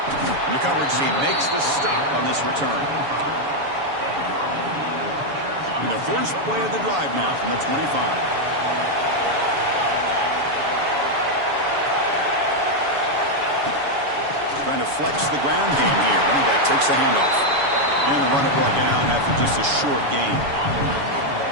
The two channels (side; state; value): left; late; 7.0 ms